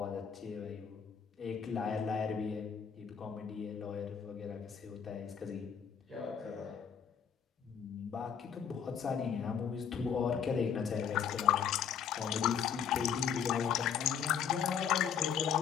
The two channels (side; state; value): right; quieter; 7.7 dB